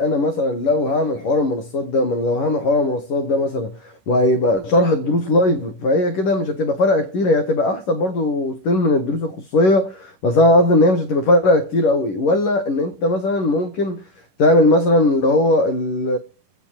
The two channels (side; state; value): right; late; 11 ms